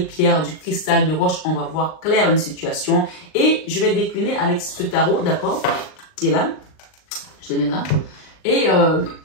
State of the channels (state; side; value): late; right; 39 ms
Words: pierre du cristal de roche, on va voir clair une situation. Et je vais décliner avec ce tarot, d'accord, qui est là. Je le mets là. Et